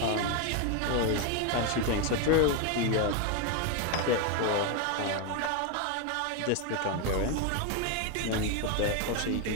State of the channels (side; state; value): both; different; correlation 0.02